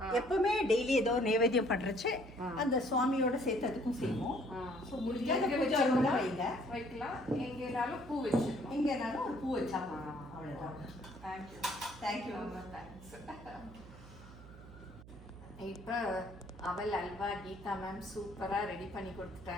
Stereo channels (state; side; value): noise; right; hum, 17 dB below the sound